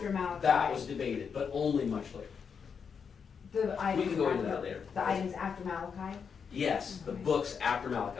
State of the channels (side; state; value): right; quieter; 6.4 dB